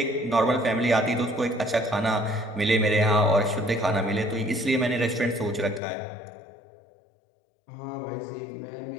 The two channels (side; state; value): right; drops out; at 5.8 s